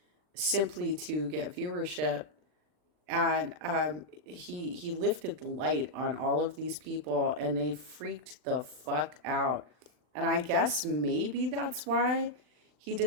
simply to get viewership. And he lifted the light on all of these people and they freaked the fuck out. And I guess maybe that's why he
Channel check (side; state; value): left; late; 39 ms